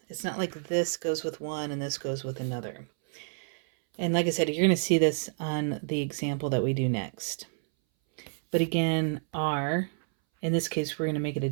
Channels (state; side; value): silent; left; 58 dB below the other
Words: It's not like this goes with one and this goes with another. And like I said, you're going to see this on the example that we do next. But again, r, in this case, we're going to make it a